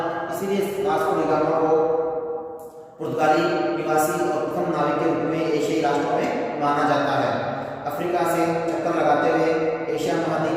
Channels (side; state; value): both; identical; correlation 1.00